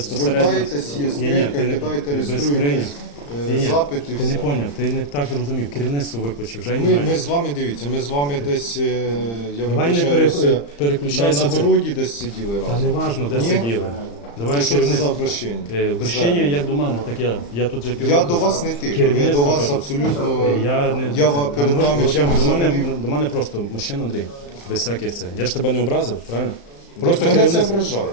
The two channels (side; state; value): right; late; 35 ms